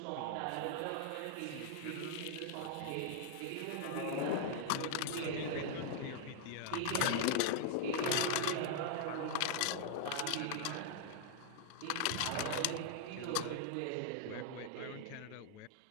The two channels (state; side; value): different; both; correlation -0.01